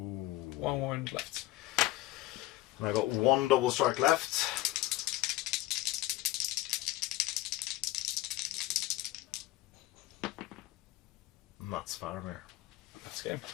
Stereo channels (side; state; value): right; quieter; 16.8 dB